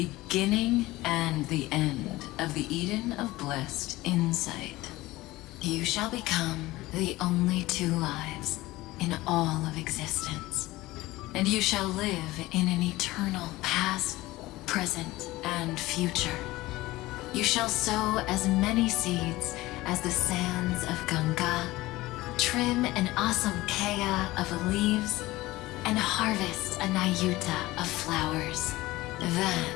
and the end of the Eden of blessed insight. You shall become the only two lives in all of existence, and you shall live in an eternal past, present, and future. You shall sow as many seeds as the sands of Ganga, trim an awesome kea of leaves, and harvest a Nayuta of flowers.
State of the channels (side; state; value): right; quieter; 18.7 dB